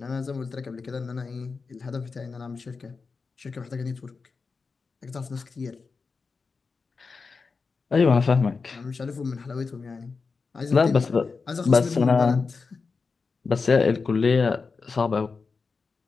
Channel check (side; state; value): right; quieter; 4.7 dB